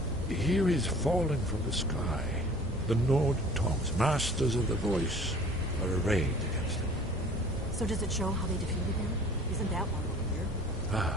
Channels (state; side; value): normal; both; correlation 0.48